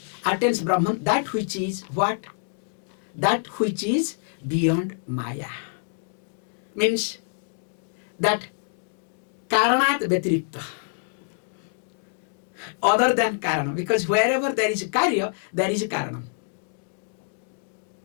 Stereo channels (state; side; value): silent; right; digital silence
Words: attains Brahman, that which is what? That which is beyond maya. Means that karanat vyatirikta. Other than karana. Because wherever there is a karya, there is a karanam.